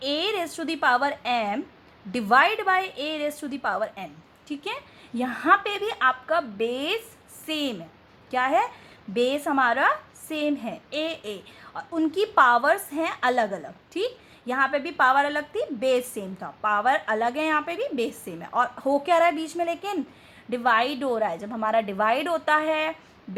a⁻m divide by a⁻n. ठीक है, यहाँ पे भी आपका बेस सेम है. क्या है? बेस हमारा सेम है a, और उनकी पावर्स हैं अलग अलग. ठीक, यहाँ पे भी पावर अलग थी, बेस सेम था. पावर अलग है, यहाँ पे भी बेस सेम है. और हो क्या रहा है बीच में? लेकिन डिवाइड हो रहा है. जब हमारा डिवाइड होता है,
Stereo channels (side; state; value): both; identical; correlation 1.00